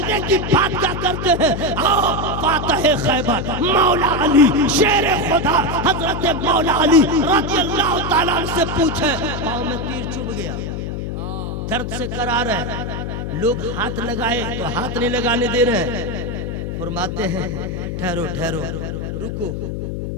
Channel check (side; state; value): left; noise; hum, 4 dB below the sound